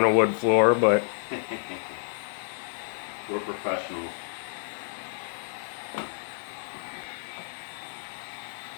a wood floor, but We're professionals.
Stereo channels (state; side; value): silent; right; digital silence